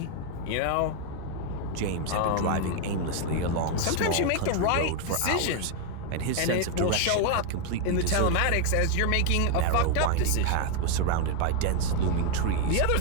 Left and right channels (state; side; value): different; both; correlation 0.01